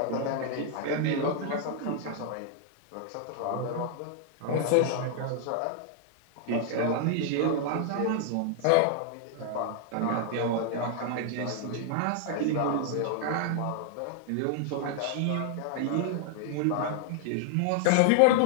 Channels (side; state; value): both; different; correlation 0.00